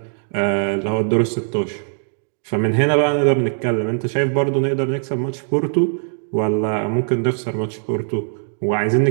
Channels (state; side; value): silent; left; digital silence